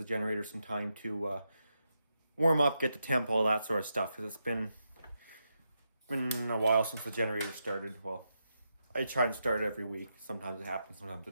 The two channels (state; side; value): inverted; both; correlation -0.85